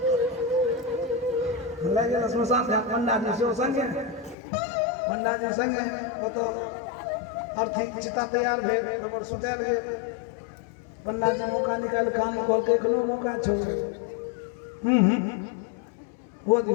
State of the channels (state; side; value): drops out; right; at 4.4 s